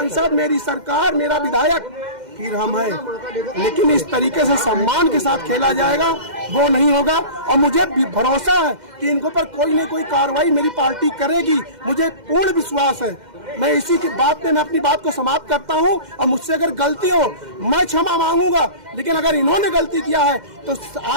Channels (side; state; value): left; late; 2.1 ms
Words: मेरी सरकार, मेरा विधायक, फिर हम हैं। लेकिन इस तरीके से सम्मान के साथ खेला जाएगा वो नहीं होगा। और मुझे भरोसा है कि इनको पर कोई न कोई कार्रवाई मेरी पार्टी करेगी, मुझे पूर्ण विश्वास है। मैं इसी की बात पे मैं अपनी बात को समाप्त करता हूं। और मुझसे अगर गलती हो मैं क्षमा मांगूंगा, लेकिन अगर इन्होंने गलती किया है तो